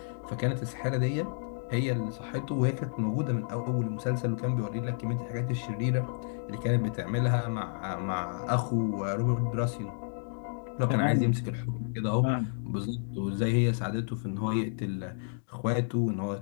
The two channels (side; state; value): right; silent; digital silence